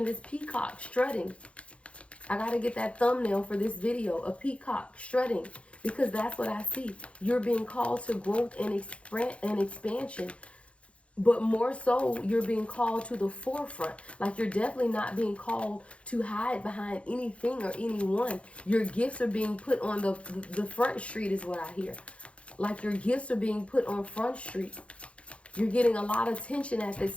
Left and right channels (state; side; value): late; right; 0.061 ms